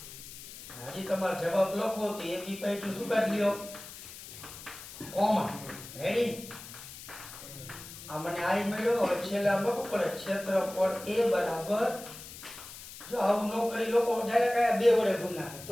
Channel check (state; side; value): noise; left; hiss, 14 dB below the sound